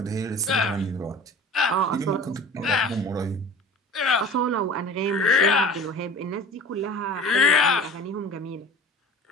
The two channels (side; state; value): both; normal; correlation 0.42